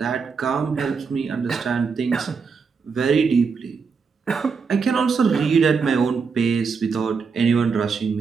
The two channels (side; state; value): left; quieter; 5.3 dB